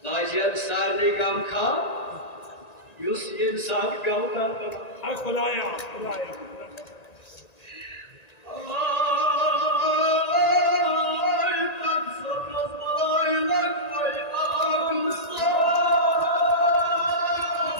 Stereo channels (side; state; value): right; late; 1.9 ms